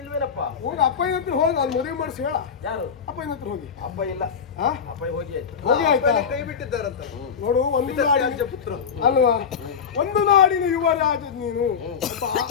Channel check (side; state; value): right; quieter; 6.7 dB